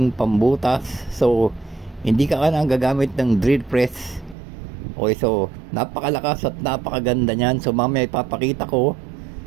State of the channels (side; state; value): left; drops out; at 4.4 s